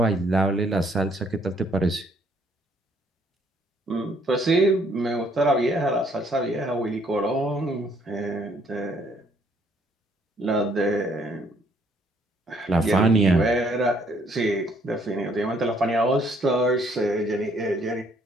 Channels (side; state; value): both; normal; correlation 0.65